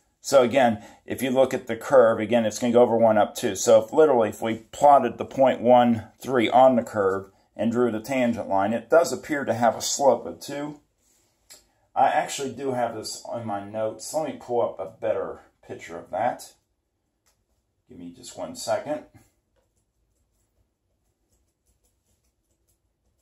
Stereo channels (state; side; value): identical; both; correlation 1.00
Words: So again, if you look at the curve, again, it's going to go over 1 up 2. So if we plotted the point 1, 3 on the curve and drew the tangent line, it does appear to have a slope of 2. I actually do have this on my notes. Let me pull up a better picture of that. Give me just 1 second.